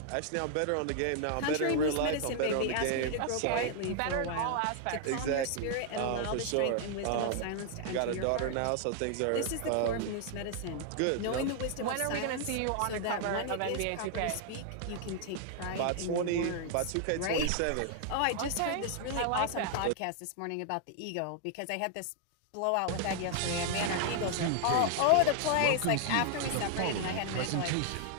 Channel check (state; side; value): different; both; correlation 0.00